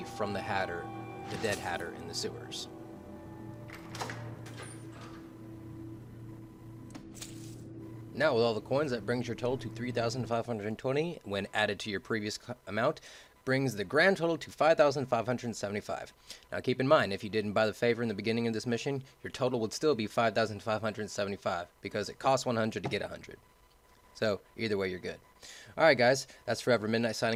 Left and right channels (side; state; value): both; identical; correlation 1.00